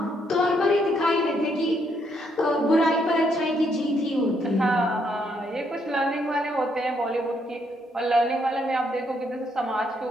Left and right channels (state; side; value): normal; both; correlation 0.73